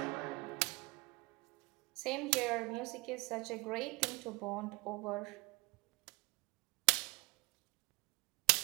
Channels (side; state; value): left; quieter; 26.4 dB